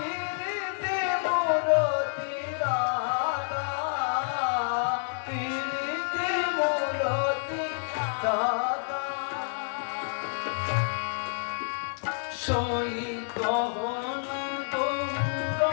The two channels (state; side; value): silent; right; 59 dB below the other